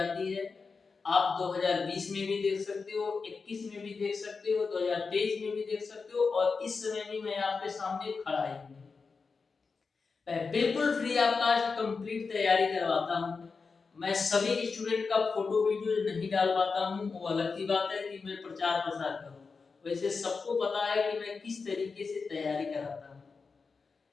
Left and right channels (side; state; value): right; quieter; 4.7 dB